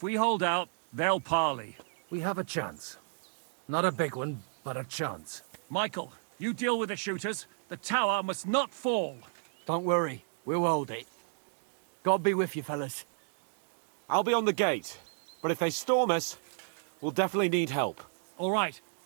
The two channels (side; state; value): left; silent; digital silence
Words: we hold out, they'll parley. We have a chance. Not a big one, but a chance. Michael, you deal with the shooters. The tower must not fall. Don't worry, we'll hold it. God be with you, fellas. I'll be on the gate, but if they storm us, we'll definitely need help. All right,